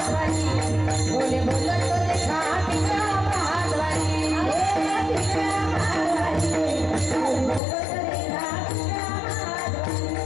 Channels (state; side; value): drops out; right; at 7.6 s